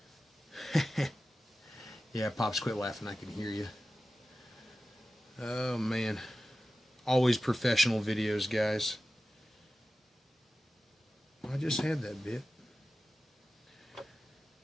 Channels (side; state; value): both; normal; correlation 0.94